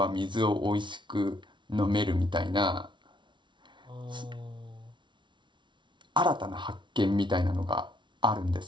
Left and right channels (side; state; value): left; late; 0.23 ms